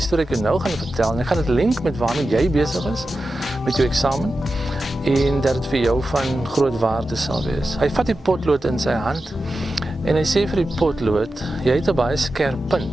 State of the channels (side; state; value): both; normal; correlation 0.92